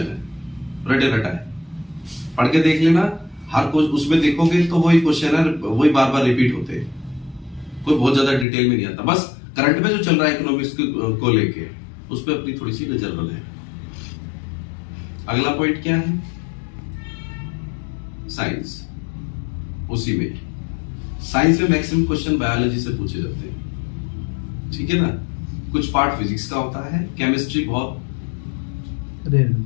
है, रटे रटा है, पढ़ के देख लेना। हर कुछ उसमें देखोगे तो वही क्वेश्चन है, वही बार बार रिपीट होते हैं, कोई बहुत ज्यादा डिटेल में नहीं आता। बस करंट में जो चल रहा है इकोनॉमिक्स को लेके, उस पर अपनी थोड़ी सी नजर बनाए। अगला पॉइंट क्या है? साइंस। उसी में साइंस में मैक्सिमम क्वेश्चन बायोलॉजी से पूछे जाते हैं, ठीक है ना। कुछ पार्ट फिजिक्स का होता है, केमिस्ट्री बहुत रेयर,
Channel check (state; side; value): drops out; right; at 8.5 s